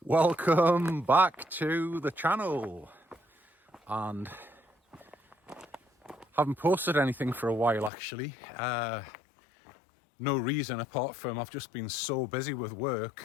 Welcome back to the channel, and haven't posted anything for a while actually. No reason apart from I've just been so busy with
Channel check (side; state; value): right; drops out; at 7.9 s